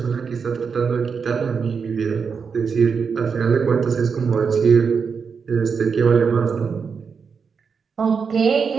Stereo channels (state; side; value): quieter; left; 5.8 dB